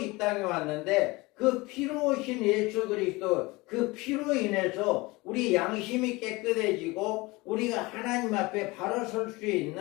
땅에 왔는데 그 피로 오신 예수 그리스도 그 피로 인해서 우리 양심이 깨끗해지고 우리가 하나님 앞에 바로 설 수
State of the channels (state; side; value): quieter; right; 23.0 dB